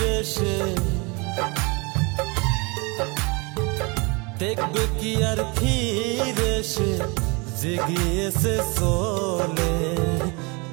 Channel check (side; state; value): left; quieter; 29.2 dB